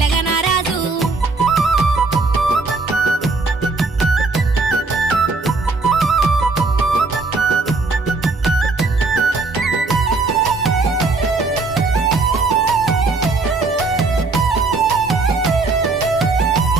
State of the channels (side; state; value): left; quieter; 3.8 dB